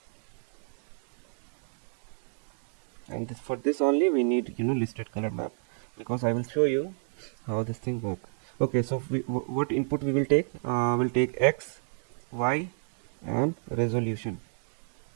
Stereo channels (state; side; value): silent; left; 58 dB below the other